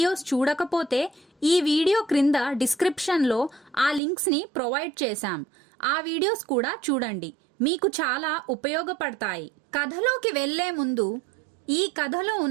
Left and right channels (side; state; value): left; drops out; at 4.0 s